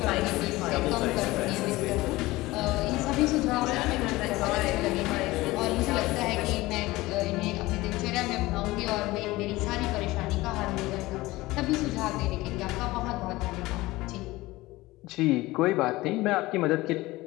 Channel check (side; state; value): right; quieter; 19.4 dB